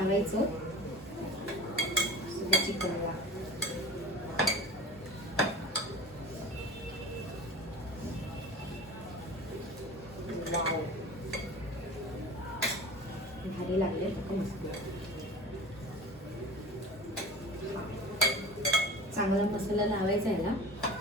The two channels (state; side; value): normal; both; correlation 0.37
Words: सगळं चिकनला. भारी लागले मस्त. चांगला मसाला लावायचा आहे ना